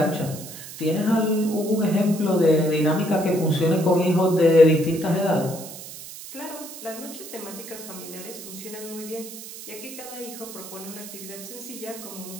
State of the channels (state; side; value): noise; right; hiss, 13 dB below the sound